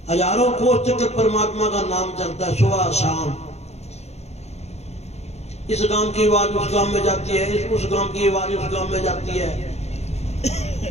हजारों कोस चक्र परमात्मा का नाम चलता है सुबह शाम। इस गांव की आवाज उस गांव में जाती है, उस गांव की आवाज उस गांव में जाती है।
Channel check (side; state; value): right; late; 0.31 ms